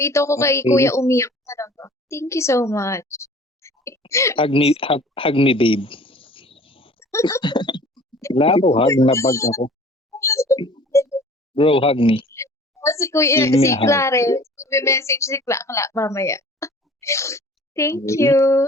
ko kay Okay. kuya umiyak talaga. Thank you so much. Hug me, babe. Wala ako, hug na bag ako. Bro, hug me. Si kuya, Give me si a hug. Clarence, message si Kla mamaya. Thank Okay. you.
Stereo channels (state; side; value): normal; both; correlation 0.48